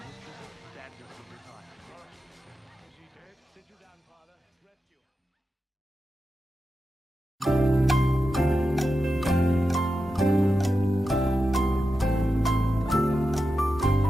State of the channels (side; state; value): both; normal; correlation 0.90